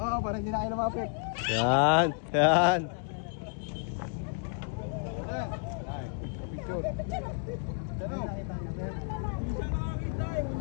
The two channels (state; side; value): silent; right; 56 dB below the other